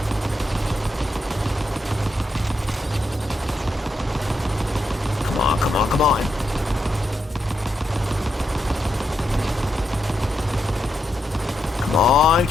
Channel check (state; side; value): normal; both; correlation 0.83